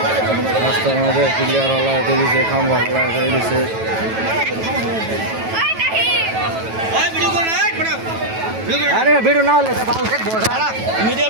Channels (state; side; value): late; left; 9.1 ms